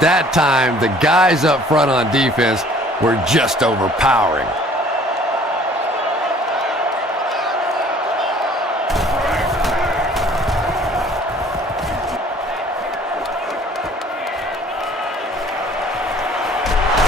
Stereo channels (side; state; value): both; normal; correlation 0.54